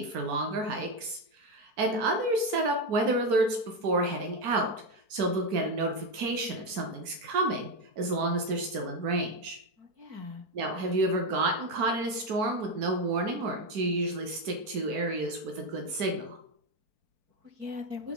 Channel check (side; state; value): left; late; 4.5 ms